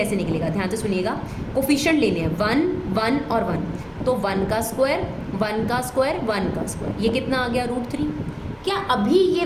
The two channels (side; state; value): both; identical; correlation 1.00